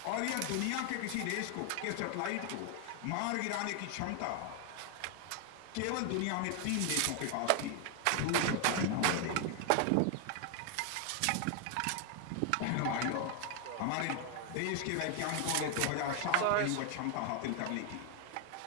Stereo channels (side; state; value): both; different; correlation 0.00